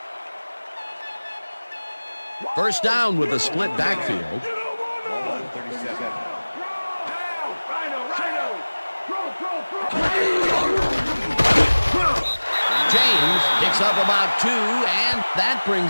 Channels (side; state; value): both; inverted; correlation -1.00